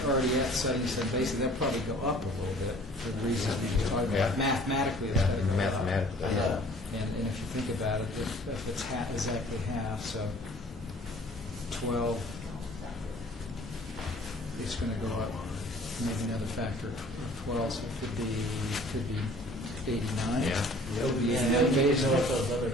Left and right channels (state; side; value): normal; both; correlation 0.51